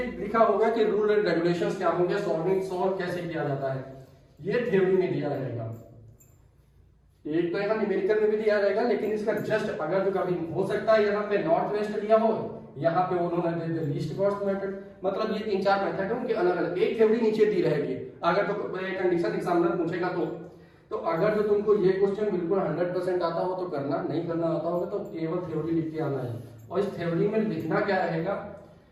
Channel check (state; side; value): identical; both; correlation 1.00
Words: लिखा होगा कि रूल एंड रेगुलेशंस क्या होंगे, सॉल्व कैसे किया जाता है, ये थ्योरी में दिया रहेगा। एक तो यहाँ न्यूमेरिकल में भी दिया रहेगा, लेकिन इसका जस्ट अगर जो कभी हो सकता है यहाँ पे नॉर्थ वेस्ट दिया हो, यहाँ पे उन्होंने दे लीस्ट कॉस्ट मेथड, मतलब ये 3-4 मेथड है उनके अलग अलग, एक थ्योरी नीचे दी रहेगी अगर तो कंडीशन एग्जामिनर पूछेगा तो। तो अगर जो तुमको ये क्वेश्चन बिल्कुल 100% आता हो तो करना, नहीं करना आता होगा तो केवल थ्योरी लिख के आना है। और इस थ्योरी में लिखना क्या रहेगा,